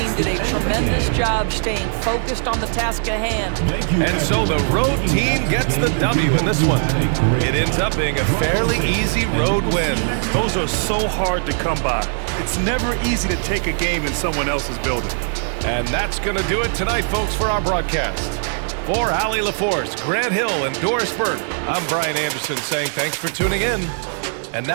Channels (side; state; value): left; silent; digital silence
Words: did a tremendous job staying focused on the task at hand. And so the road team gets the W in this one. It ends up being a fairly easy road win. Those are so hard to come by. It's never easy to take a game in someone else's building. And that's going to do it tonight, folks, for our broadcast. For Allie LaForce, Grant Hill, and Doris Burke, I'm Brian Anderson saying thanks for tuning in. And